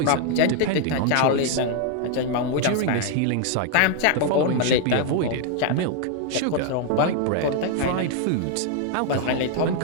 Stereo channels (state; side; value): different; both; correlation 0.00